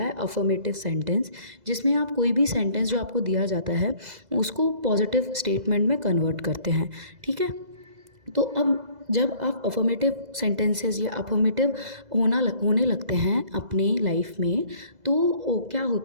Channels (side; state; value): left; late; 2.0 ms